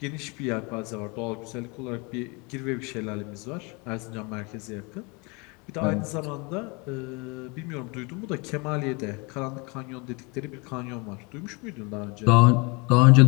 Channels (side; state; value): right; quieter; 29.5 dB